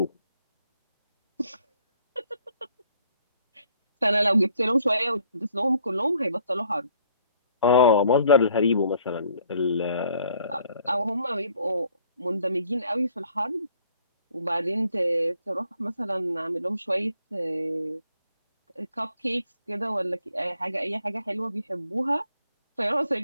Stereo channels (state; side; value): inverted; both; correlation -0.63